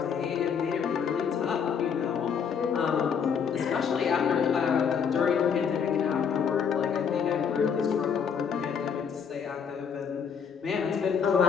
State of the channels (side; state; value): right; quieter; 7.0 dB